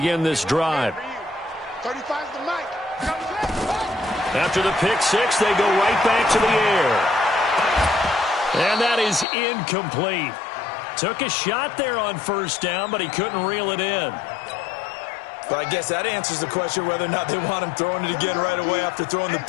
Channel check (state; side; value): drops out; right; at 9.2 s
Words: this drive. After the pick six, they go right back to the air. And that is incomplete. Took a shot there on first down, but he couldn't reel it in. But I guess that answers the question whether or not they want him throwing it again right away after throwing the